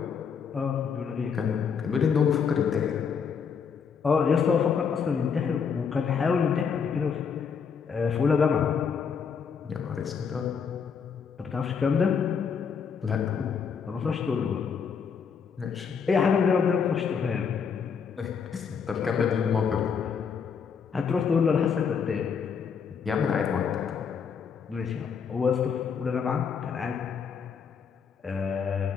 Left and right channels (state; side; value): quieter; right; 6.5 dB